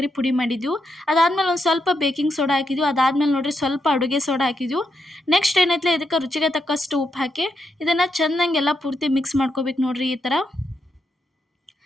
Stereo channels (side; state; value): both; normal; correlation 0.82